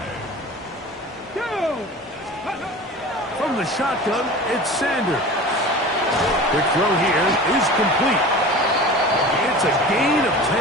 From the shotgun, it's Sanders. Quick throw here is complete. It's a gain of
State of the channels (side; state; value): both; normal; correlation 0.36